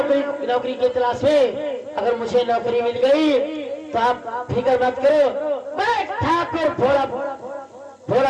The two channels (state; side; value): identical; both; correlation 1.00